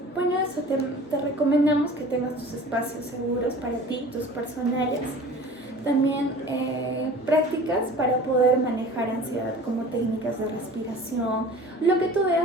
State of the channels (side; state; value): both; normal; correlation 0.42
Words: bueno, eso te recomendamos que tengas tus espacios seguros para ti, tus personales. También prácticas para poder manejar ansiedad, como técnicas de respiración, lo que tú